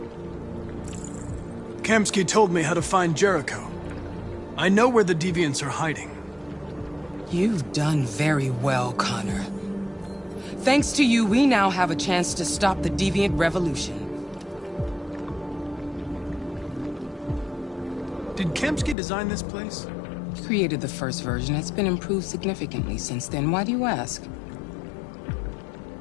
Kamsky told me how to find Jericho. I know where the deviants are hiding. You've done very well, Connor. Thanks to you, we now have a chance to stop the deviant revolution. Did Kamsky design this place? He created the first version. It's been improved significantly since then. Why do you ask?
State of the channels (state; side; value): drops out; right; at 18.9 s